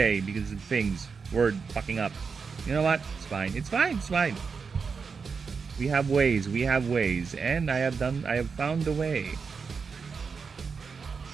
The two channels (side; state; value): left; quieter; 5.4 dB